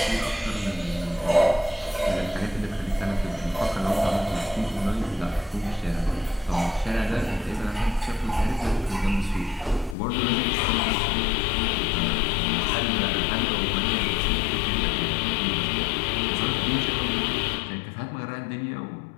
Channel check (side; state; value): right; drops out; at 10.0 s